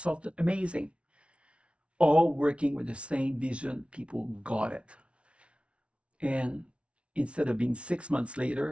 amazing, all working with the same vision. People got it. And instead of being 6 months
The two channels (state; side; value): late; left; 0.060 ms